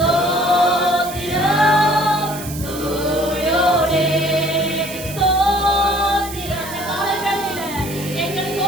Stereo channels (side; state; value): right; noise; hiss, 12 dB below the sound